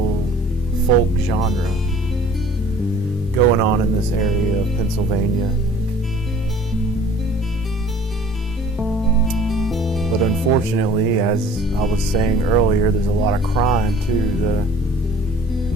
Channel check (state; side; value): normal; both; correlation 0.50